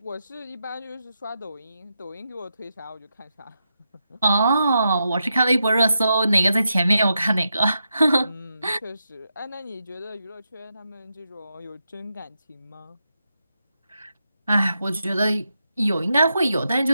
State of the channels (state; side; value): inverted; both; correlation -0.86